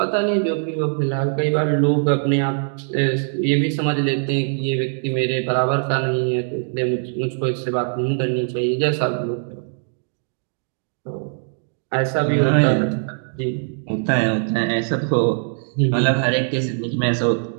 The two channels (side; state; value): left; silent; 65 dB below the other